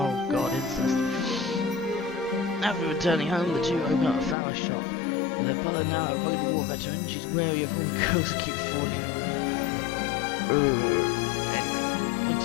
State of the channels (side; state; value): right; drops out; at 4.4 s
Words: god, incest. After returning home, the two open up a flower shop. With her brother now a rugged war veteran, she's wary of all the girls that keep falling